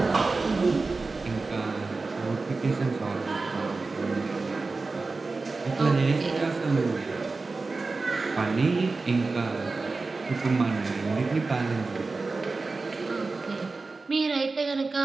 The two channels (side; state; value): left; quieter; 3.8 dB